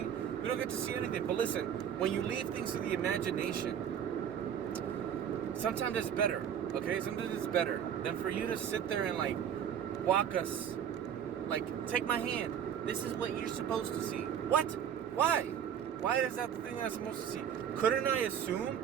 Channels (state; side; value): quieter; left; 8.8 dB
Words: We don't get to see anything. But listen, when you leave things to the imagination, sometimes it's better. Okay, sometimes it's better than for you to sit there and like walk us, like take my hand. This is what you're supposed to see. What? Why? Why is that the thing that I'm supposed to see? Couldn't I